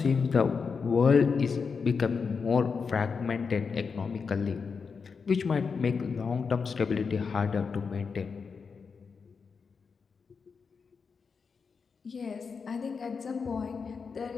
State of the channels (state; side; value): quieter; right; 5.4 dB